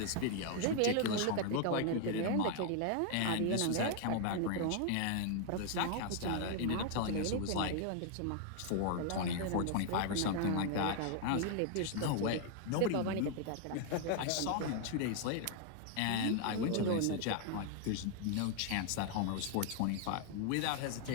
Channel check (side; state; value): both; different; correlation 0.00